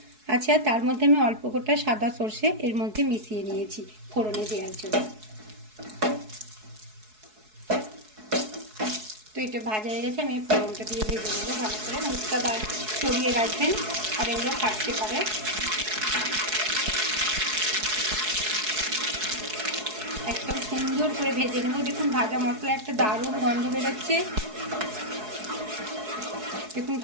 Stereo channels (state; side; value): late; left; 4.7 ms